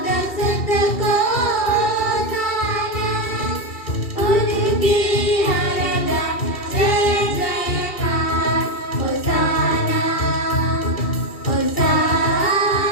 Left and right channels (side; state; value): right; late; 2.7 ms